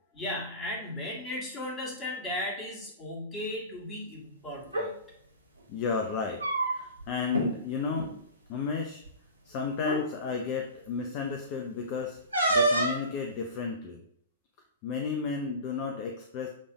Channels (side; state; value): both; inverted; correlation -0.33